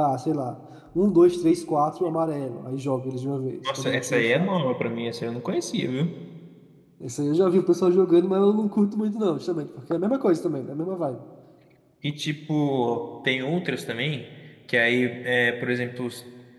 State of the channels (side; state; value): both; identical; correlation 1.00